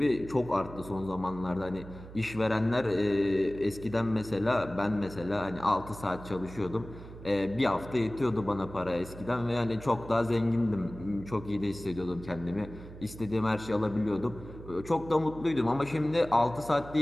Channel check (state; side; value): noise; right; hum, 15 dB below the sound